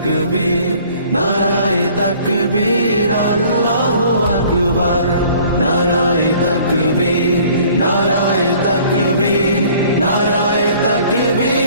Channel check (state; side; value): inverted; both; correlation -0.54